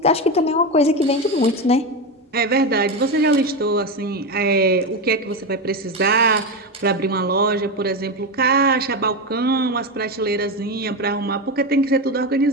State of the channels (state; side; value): normal; both; correlation 0.15